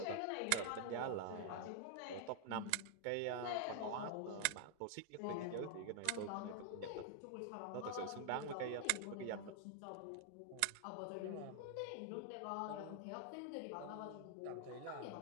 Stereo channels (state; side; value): different; both; correlation -0.01